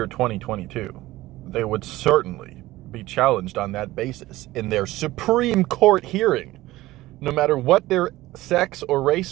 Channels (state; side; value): quieter; left; 17.4 dB